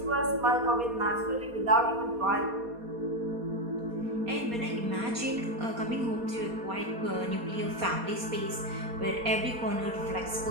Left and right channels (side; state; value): left; late; 4.2 ms